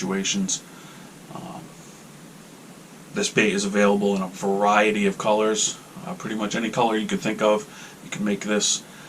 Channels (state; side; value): identical; both; correlation 1.00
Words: This bait is available in a variety of colors. Pretty much any color you could think of, you can make this.